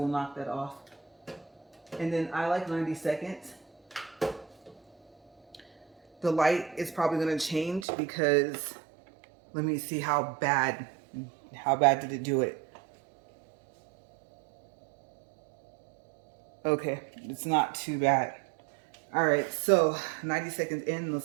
knock that off. And then I like 90 seconds. The light is probably going to change because let me see how bad did it do it. Okay, it's not too bad. All right, so 90 seconds in, let's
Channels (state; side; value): drops out; left; at 7.9 s